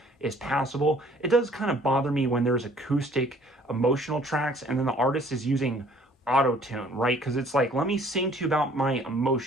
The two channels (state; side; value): normal; both; correlation 0.56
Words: is passable. It does kind of bother me when there's acoustic emotional tracks and then the artist is using auto-tune, right? Because it's like, let me sing to you about my